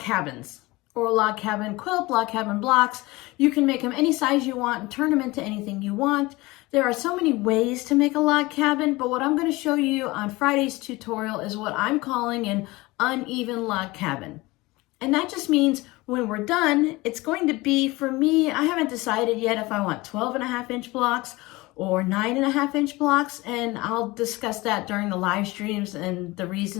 or log cabin quilt, log cabin blocks. You can make them any size you want and turn them into anything you want. There are so many ways to make a log cabin, but what I'm going to show you on Friday's tutorial is what I'm calling an uneven log cabin. And that just means when we're done, it's going to be, for me, I haven't decided yet if I want 12.5-inch blocks or 9.5-inch blocks, and I'll discuss that during the live streams and the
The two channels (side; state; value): right; quieter; 21.5 dB